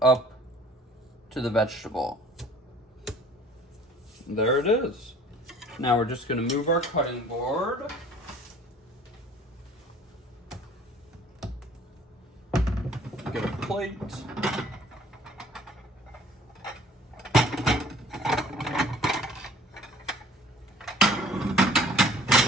up to the vegetable. There it is. Now we're just going to move our cutting board. Get a plate.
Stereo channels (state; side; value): normal; both; correlation 0.52